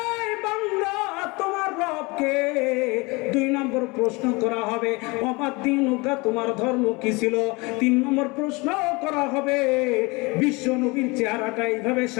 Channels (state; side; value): quieter; right; 25.8 dB